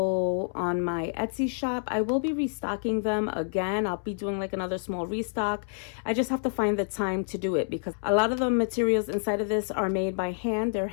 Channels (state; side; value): silent; right; 59 dB below the other